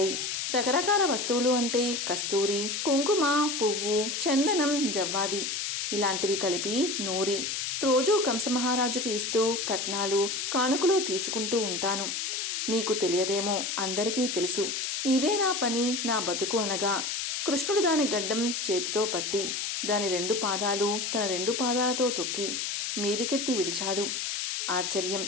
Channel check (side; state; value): left; noise; hiss, 2 dB below the sound